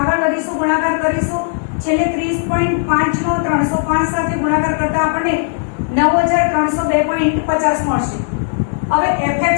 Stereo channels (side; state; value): right; silent; 69 dB below the other